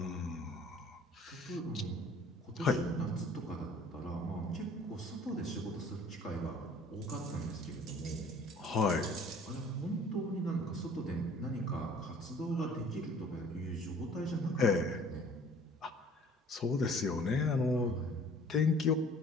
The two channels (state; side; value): normal; both; correlation 0.52